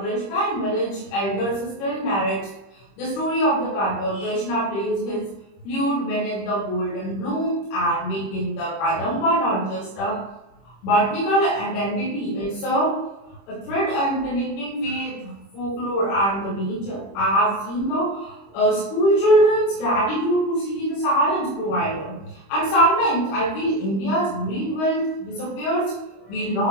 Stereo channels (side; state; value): right; late; 26 ms